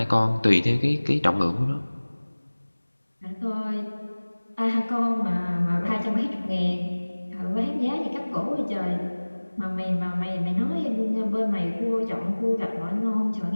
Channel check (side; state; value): both; inverted; correlation -1.00